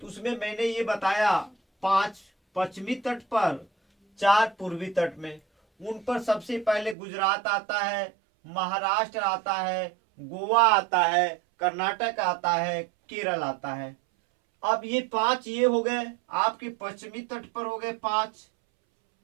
उसमें मैंने ये बताया 5 पश्चिमी तट पर, 4 पूर्वी तट में। उन पर सबसे पहले गुजरात आता है, महाराष्ट्र आता है, गोवा आता है, कर्नाटक आता है, केरल आता है। अब ये 5 ये हो गए आपके पश्चिमी तट पर हो गए 5।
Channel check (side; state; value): left; drops out; at 7.0 s